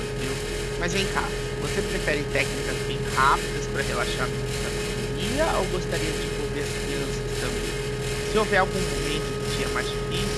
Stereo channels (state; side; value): identical; both; correlation 1.00